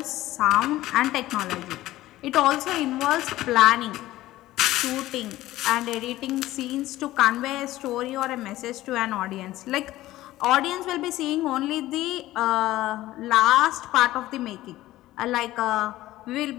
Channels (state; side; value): quieter; right; 16.0 dB